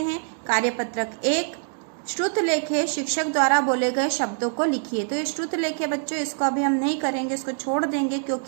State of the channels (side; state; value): left; silent; digital silence